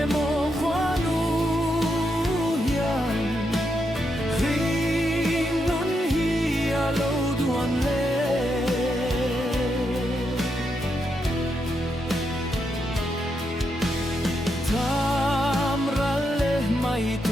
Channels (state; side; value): normal; both; correlation 0.82